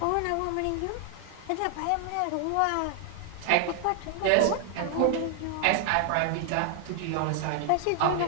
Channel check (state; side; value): different; both; correlation 0.00